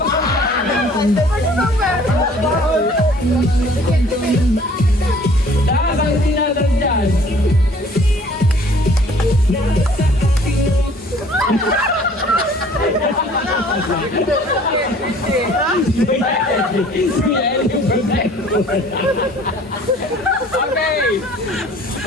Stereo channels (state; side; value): normal; both; correlation 0.53